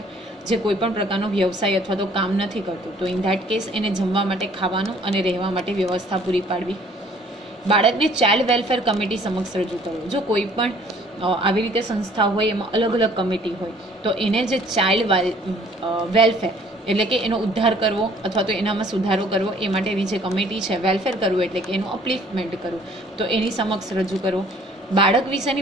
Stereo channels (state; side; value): normal; both; correlation 0.57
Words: જે કોઈ પણ પ્રકારનો વ્યવસાય અથવા તો કામ નથી કરતું, તો ઇન ધેટ કેસ એને જમવા માટે, ખાવાનું અને રહેવા માટે વ્યવસ્થા પૂરી પાડવી. બાળકને ચાઇલ્ડ વેલફેર કમિટી સમક્ષ રજૂ કરવું. જો કોઈ પણ આવી રીતે સંસ્થા હોય, એમાં અલગ અલગ કમિટી હોય, તો એને જે ચાઇલ્ડ વેલફેર એટલે કે એનો ઉદ્ધાર કરવો અથવા તો એનામાં સુધારો કરવો, એ માટેની જે કમિટી છે, વેલફેર કરવું એટલે કે એનું અપલિફમેન્ટ કરવું, તો એની સમક્ષ રજૂ કરવું. બાળક